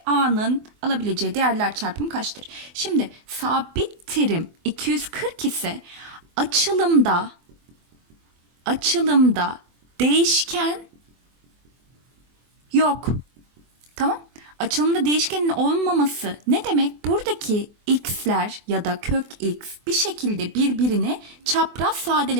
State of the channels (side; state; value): left; late; 24 ms